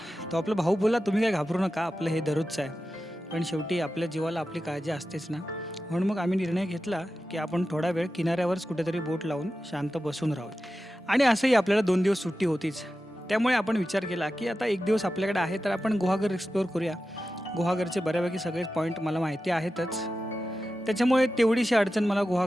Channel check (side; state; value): both; normal; correlation 0.92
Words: तो आपला भाऊ बोलला, तुम्ही काय घाबरू नका, आपलं हे दररोजचं आहे. पण शेवटी आपल्या जीवाला आपली काळजी असतेच ना. म्हणून मग आम्ही निर्णय घेतला की आपण थोडा वेळ किनाऱ्यावरच कुठेतरी बोट लावून शांत बसून राहू. आणि असंही आपल्याला 2 दिवस सुट्टी होतीच, त्यामुळे आपण विचार केला की आता 1 दिवस आपल्याकडे आहे तर आपण गुहागर एक्सप्लोअर करूया. गुहागरचे बऱ्यापैकी सगळे पॉईंट मला माहिती आहेतच, त्याच्यामुळे तेवढीशी अडचण मला